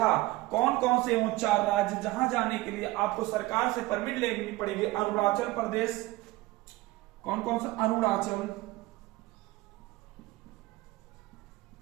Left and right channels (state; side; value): quieter; left; 19.5 dB